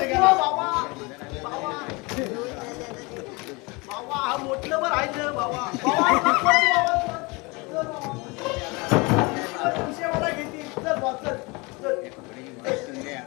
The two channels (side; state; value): right; quieter; 26.7 dB